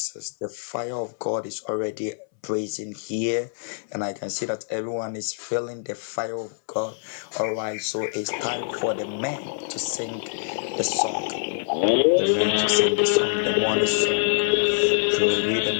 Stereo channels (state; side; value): silent; right; 62 dB below the other